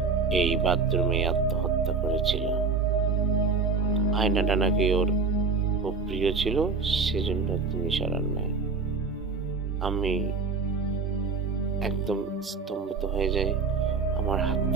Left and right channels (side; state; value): left; quieter; 4.8 dB